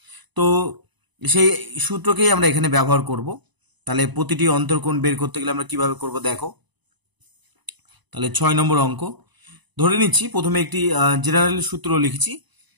তো সেই সূত্রকেই আমরা এখানে ব্যবহার করব। তাহলে প্রতিটি অন্তর্কোণ বের করতে গেলে আমরা কিভাবে করব দেখো। তাহলে 6 নম্বর অঙ্ক ধরে নিচ্ছি, প্রথমে একটি জেনারেল সূত্র লিখছি।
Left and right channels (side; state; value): left; late; 1.0 ms